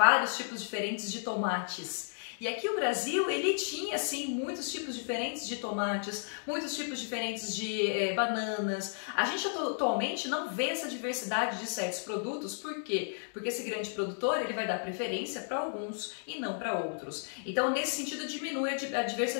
tipos diferentes de tomates. E aqui o Brasil, ele tinha, sim, muitos tipos diferentes de tomates, muitos tipos diferentes de bananas. A gente atualmente não vê essa diversidade de certos produtos, por quê? Porque esse grande produtor, ele vai dar preferência para alguns e não para outros. Então, nesse sentido, diminui a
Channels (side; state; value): right; silent; digital silence